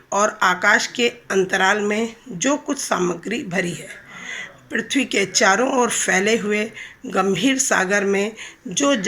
और आकाश के अंतराल में जो कुछ सामग्री भरी है, पृथ्वी के चारों ओर फैले हुए गंभीर सागर में जो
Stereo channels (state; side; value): identical; both; correlation 1.00